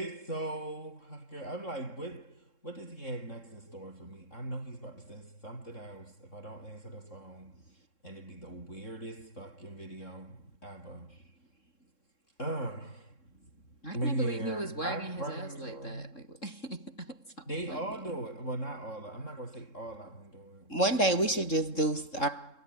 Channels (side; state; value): right; late; 3.7 ms